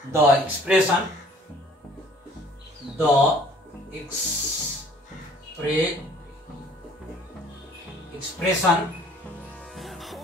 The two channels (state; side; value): normal; both; correlation 0.55